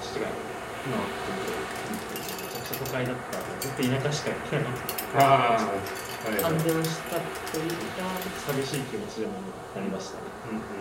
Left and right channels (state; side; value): identical; both; correlation 1.00